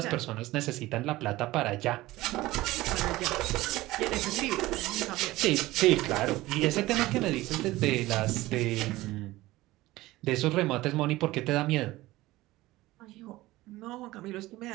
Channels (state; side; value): quieter; left; 18.1 dB